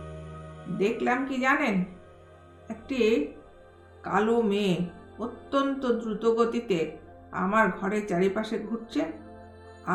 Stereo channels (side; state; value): both; identical; correlation 1.00